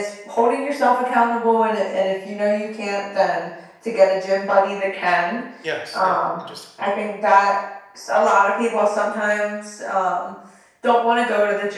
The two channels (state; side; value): identical; both; correlation 1.00